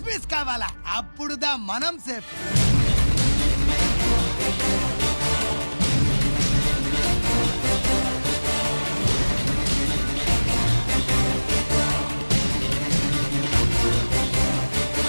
పీస్ కావాలా, అప్పుడుదా మనం సేఫ్.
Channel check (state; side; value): inverted; both; correlation -1.00